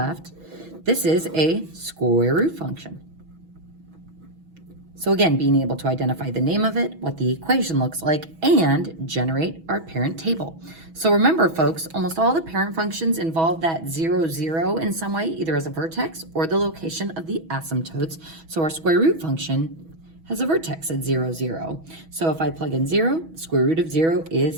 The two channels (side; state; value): left; late; 6.2 ms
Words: this is a square root function. So again, being able to identify the name of it, what the equation looks like, and generate our parent table. So remember, folks, almost all the parent functions involve that 0, 0 in some way, either as a vertex or the location of the asymptotes. So our square root function has a vertex at 0, 0. So if I plug in 0, the square root of 0